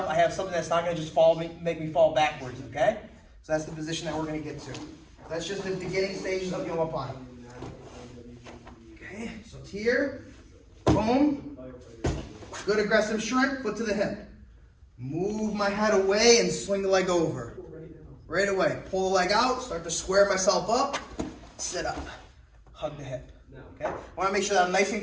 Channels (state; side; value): identical; both; correlation 1.00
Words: I have something that's not going to just make me fall backwards, okay? So that's the position that we're going to get to. That's just the beginning stages of the omoplata. Okay, so it's here. Boom. Good aggressive shrimp, foot to the hip. Move my head away and swing the leg over. Right away. Pull the leg out, start to square myself up, sit up, hug the hip. Okay? I want to make sure that I'm nice